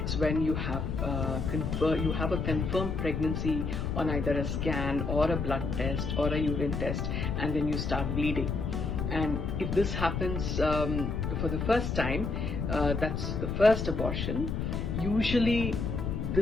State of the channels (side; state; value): left; noise; rumble, 2 dB below the sound